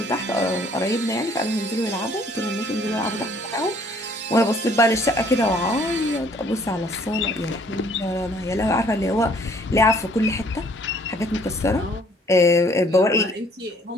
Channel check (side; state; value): both; normal; correlation 0.60